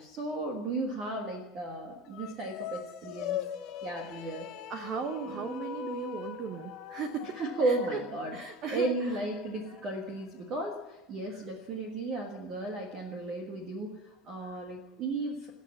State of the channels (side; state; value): both; normal; correlation 0.36